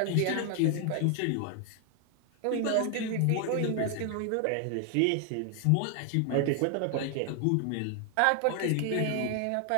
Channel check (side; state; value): both; different; correlation 0.00